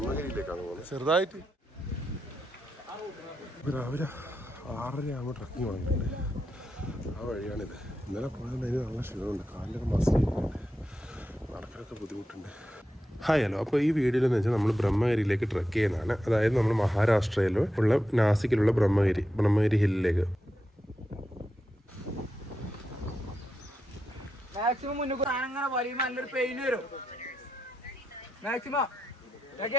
പോകുന്നത്. ചെറുതായിട്ട് രാവിലെ 6:30 ആകുമ്പോൾ ട്രക്കിങ് തുടങ്ങിയിട്ടുണ്ട്. ആ വഴിയാണിത്. ഇന്നലെ പോയതുകൊണ്ട് അതിന് നല്ല ക്ഷീണമുണ്ട്. കാലിലൊക്കെ മസിൽ ചെയ്യുന്നുണ്ട്, നടക്കാനൊക്കെ ബുദ്ധിമുട്ടുണ്ട്. Hi hello. അപ്പോൾ ഈ വീഡിയോയിലെന്ന് വെച്ചാൽ നമ്മൾ ബ്രഹ്മഗിരിയിലേക്ക് ട്രക്ക് ചെയ്യുന്നതാണ്. അതായത് നമ്മൾ മഹാരാഷ്ട്രയിൽ ഉള്ള നാസിക്കിലുള്ള ബ്രഹ്മഗിരി ഹില്ലിലേക്ക്. മാക്സിമം മുന്നോട്ട് അങ്ങനെ വലിയുമ്പോൾ നല്ലൊരു പെയിൻ വരും. മാക്സിമം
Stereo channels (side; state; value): both; normal; correlation 0.87